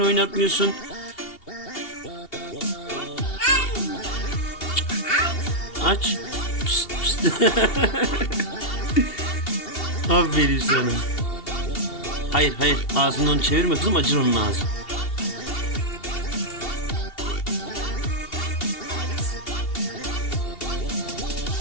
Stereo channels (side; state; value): right; late; 2.7 ms